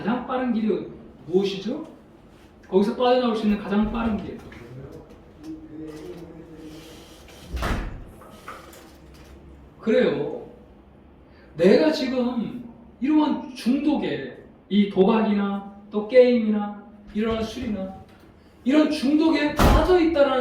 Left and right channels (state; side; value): identical; both; correlation 1.00